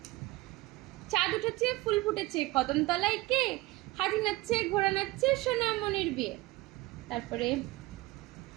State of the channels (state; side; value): quieter; left; 19.8 dB